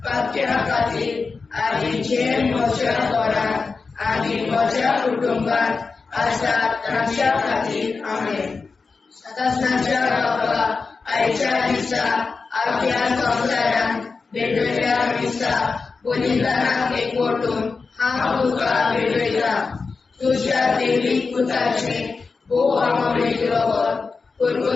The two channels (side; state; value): right; quieter; 4.5 dB